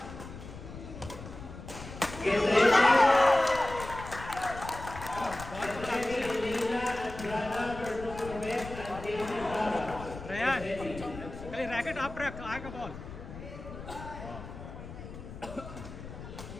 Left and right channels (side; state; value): left; noise; rumble, 12 dB below the sound